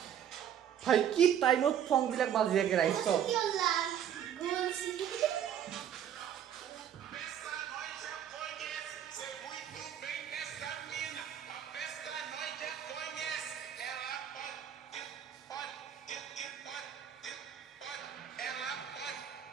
ভাই কি টাইমত ফংবিলাক বাজি থাকে ৰাইজ চব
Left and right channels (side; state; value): left; quieter; 9.5 dB